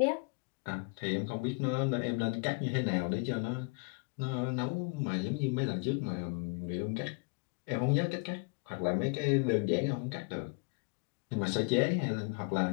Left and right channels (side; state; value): right; quieter; 32.3 dB